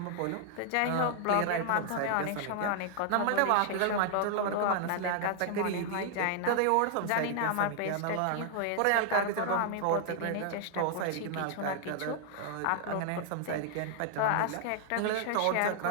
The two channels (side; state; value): both; different; correlation 0.00